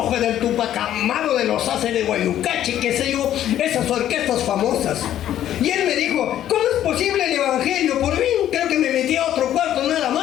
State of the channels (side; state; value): right; quieter; 11.6 dB